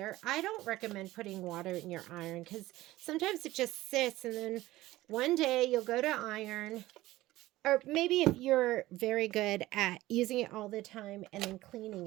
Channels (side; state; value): left; quieter; 17.0 dB